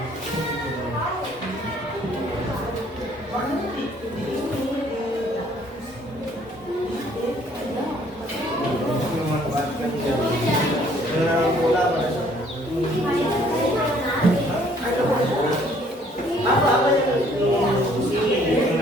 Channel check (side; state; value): both; normal; correlation 0.60